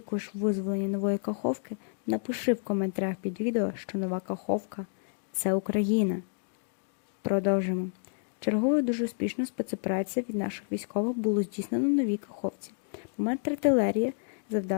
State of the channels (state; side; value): silent; right; digital silence